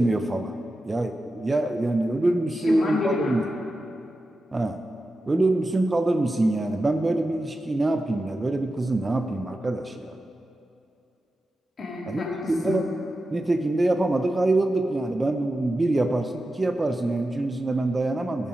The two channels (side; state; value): both; normal; correlation 0.91